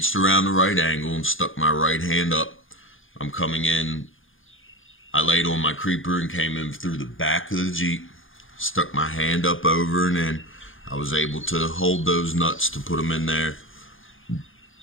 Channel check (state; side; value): late; right; 0.58 ms